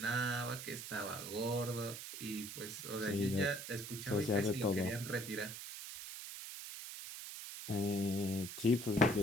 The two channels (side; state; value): right; noise; hiss, 9 dB below the sound